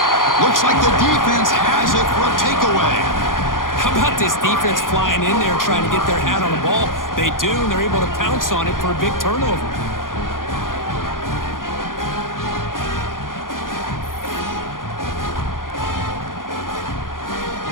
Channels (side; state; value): right; late; 0.90 ms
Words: Looks like the defense has it for a takeaway. How about this defense flying in there trying to get their hat on the ball? They do, and they're able to pounce on it for a big turnover.